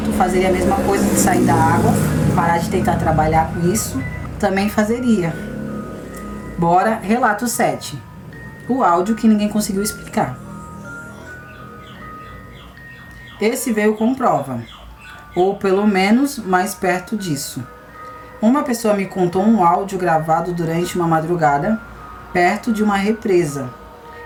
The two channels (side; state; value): both; identical; correlation 1.00